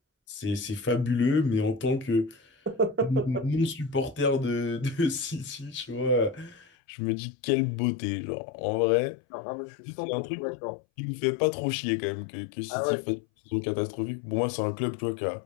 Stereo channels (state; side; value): drops out; right; at 6.7 s